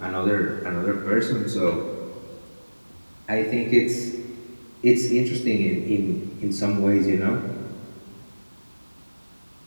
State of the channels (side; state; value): both; inverted; correlation -1.00